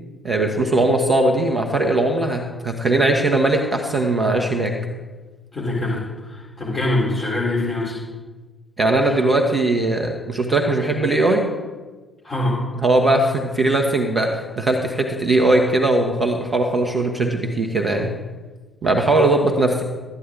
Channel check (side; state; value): both; normal; correlation 0.67